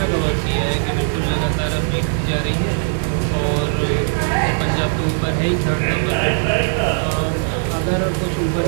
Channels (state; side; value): silent; left; digital silence